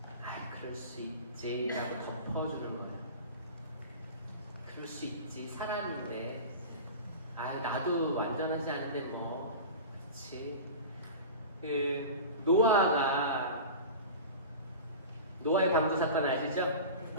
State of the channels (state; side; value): inverted; both; correlation -0.32